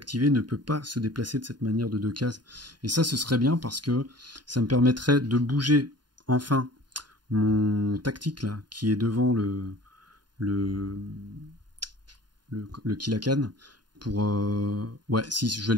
ne peut pas se déplacer de cette manière de 2 cases. Et ça, ce serait bien parce que ça me permettrait de bouger enfin mon tactique là, qui est devant le Kilakan. Pour ouais, si je vais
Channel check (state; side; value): late; left; 0.70 ms